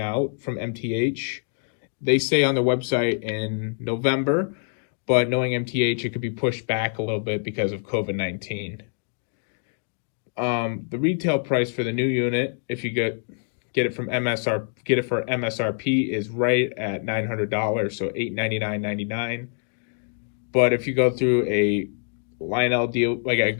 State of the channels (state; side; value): silent; right; 62 dB below the other